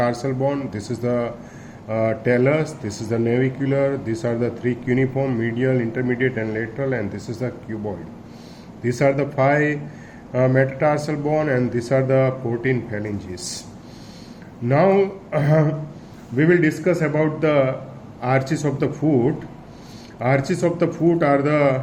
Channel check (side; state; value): both; identical; correlation 1.00